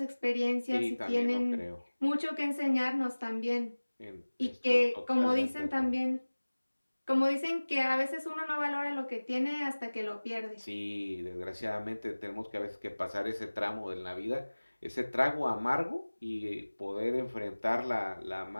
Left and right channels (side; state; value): both; inverted; correlation -1.00